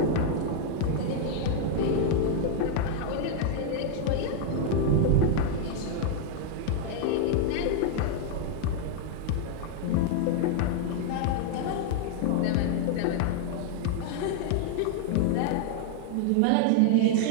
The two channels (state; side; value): different; both; correlation 0.00